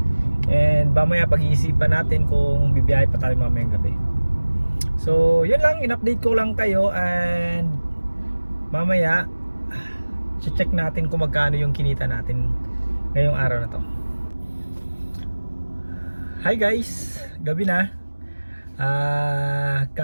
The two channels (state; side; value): inverted; both; correlation -1.00